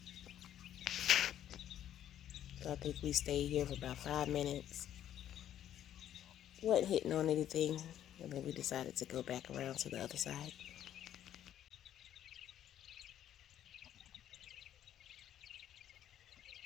So I think we stayed here for about 5 minutes. Wasn't hitting on anything, and then we decided to go back around to the other side.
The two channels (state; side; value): quieter; right; 11.0 dB